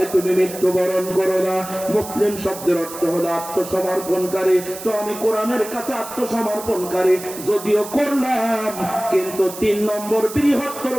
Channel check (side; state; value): right; noise; hiss, 12 dB below the sound